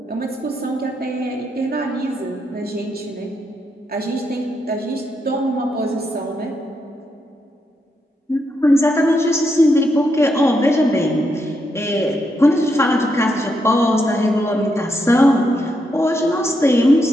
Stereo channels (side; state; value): both; normal; correlation 0.81